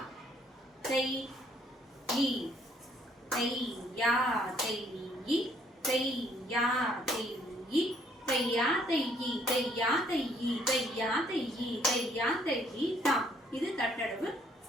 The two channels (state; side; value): normal; both; correlation 0.65